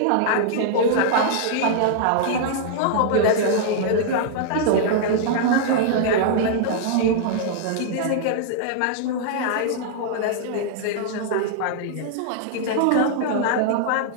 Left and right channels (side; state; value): both; different; correlation -0.01